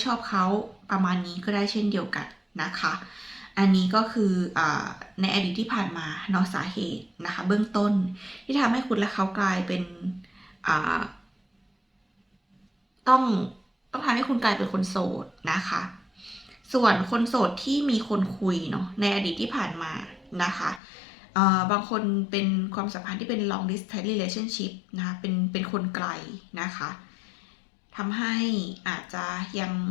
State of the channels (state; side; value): drops out; right; at 20.8 s